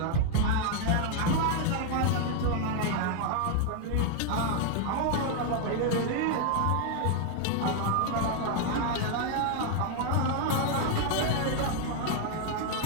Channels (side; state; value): both; different; correlation 0.00